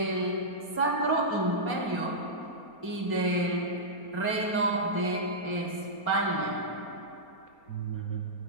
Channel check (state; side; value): late; right; 4.3 ms